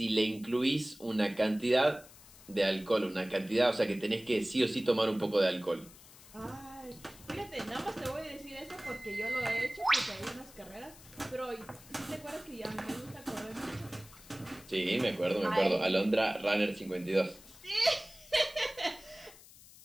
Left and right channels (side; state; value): left; noise; hiss, 21 dB below the sound